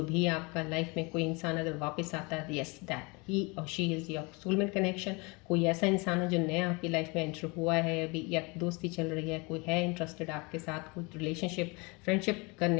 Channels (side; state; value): right; quieter; 28.0 dB